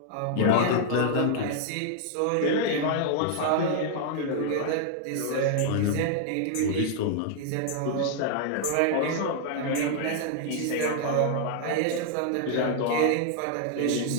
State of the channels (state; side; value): different; both; correlation 0.00